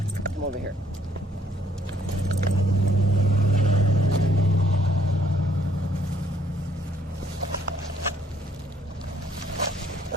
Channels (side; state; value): both; normal; correlation 0.65